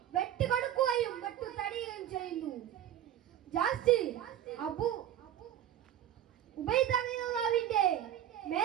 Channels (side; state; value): left; quieter; 11.3 dB